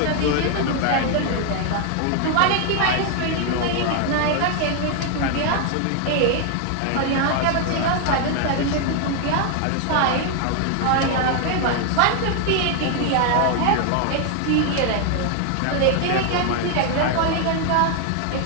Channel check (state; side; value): different; both; correlation 0.00